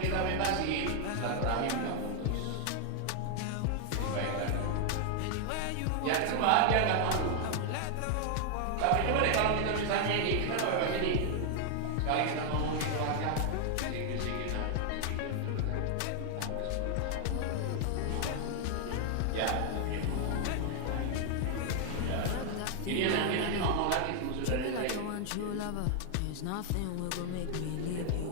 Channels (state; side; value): different; both; correlation 0.00